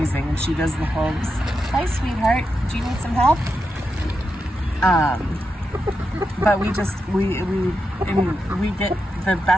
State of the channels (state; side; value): normal; both; correlation 0.87